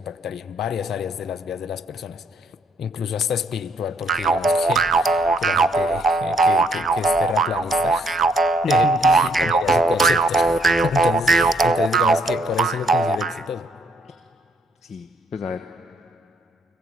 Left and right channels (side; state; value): both; normal; correlation 0.69